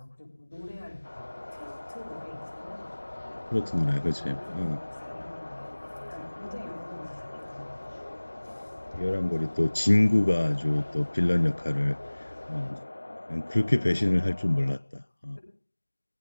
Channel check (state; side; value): inverted; both; correlation -1.00